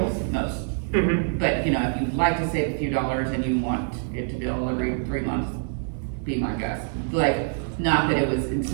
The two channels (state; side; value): silent; left; digital silence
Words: most. But if you'd like to save a few dollars and you want it to bill every 3 months, be my guess. Like, not that it was